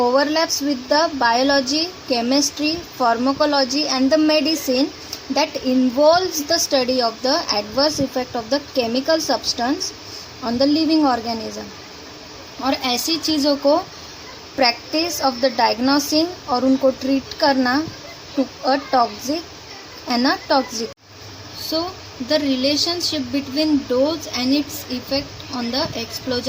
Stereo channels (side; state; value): both; identical; correlation 1.00